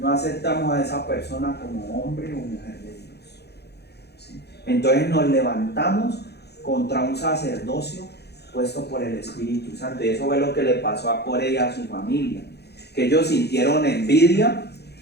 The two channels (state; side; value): late; right; 0.48 ms